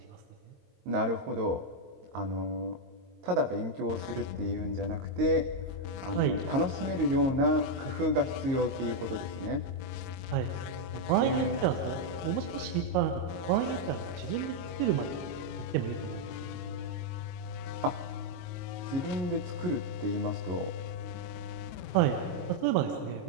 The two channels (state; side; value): late; left; 22 ms